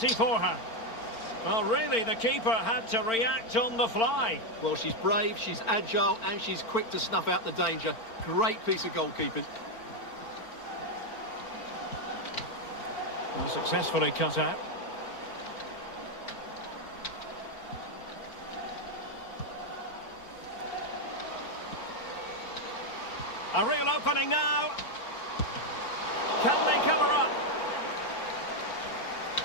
for her. Well, really, the keeper had to react on the fly. Well, she's brave, she's agile, and she's quick to snuff out the danger. Great piece of goalkeeping. Well, successfully cut out. A real opening now. Can they cover up?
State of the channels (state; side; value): late; right; 4.4 ms